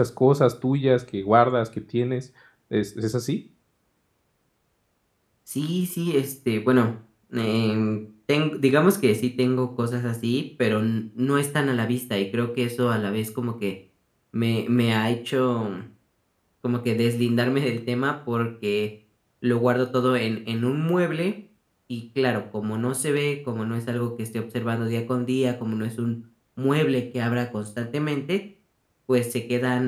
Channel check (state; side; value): identical; both; correlation 1.00